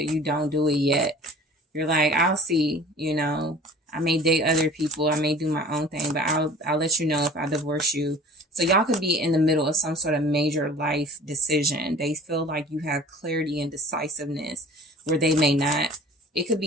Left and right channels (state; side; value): normal; both; correlation 0.45